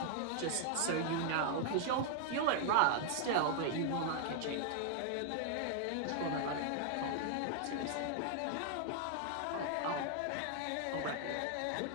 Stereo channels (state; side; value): different; both; correlation 0.00